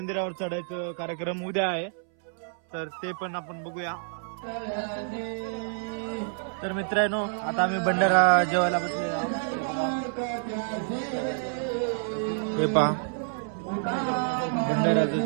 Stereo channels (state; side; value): silent; left; 59 dB below the other